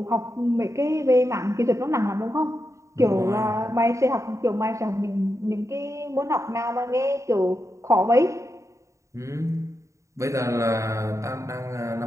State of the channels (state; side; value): late; left; 0.15 ms